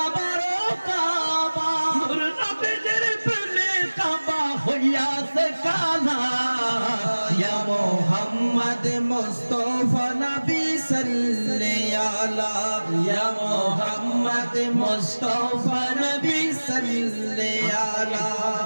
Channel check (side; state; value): both; inverted; correlation -1.00